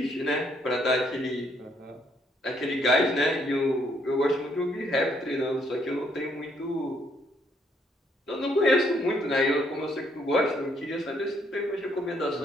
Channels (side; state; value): both; normal; correlation 0.70